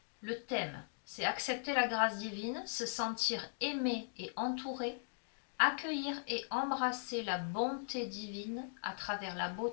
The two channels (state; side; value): silent; right; digital silence